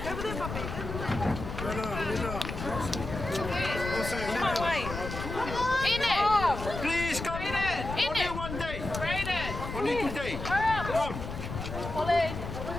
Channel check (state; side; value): noise; left; rumble, 7 dB below the sound